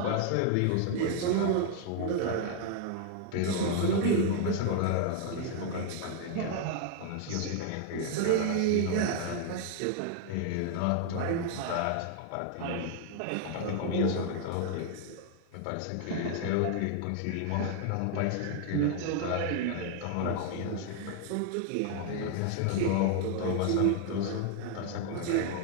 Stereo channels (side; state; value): both; different; correlation 0.00